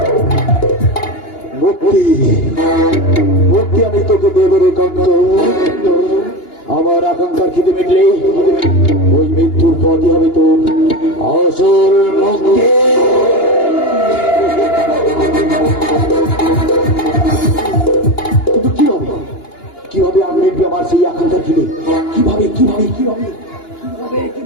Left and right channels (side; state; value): right; late; 2.9 ms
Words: মুক্তি, মুক্তি আমি তোকে দেব রে কান্ত। আমার আকাঙ্ক্ষার খিদে মিটলেই ওই মৃত্যুর পথই হবে তোর আসল মুক্তি। কিন্তু কিভাবে আমি মিটবে আমার সেই আকাঙ্ক্ষার খিদে? কিভাবে কিভাবে কিভাবে কিভাবে